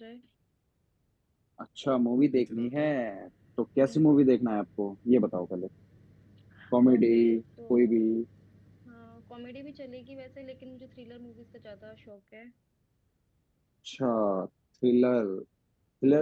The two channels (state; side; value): identical; both; correlation 1.00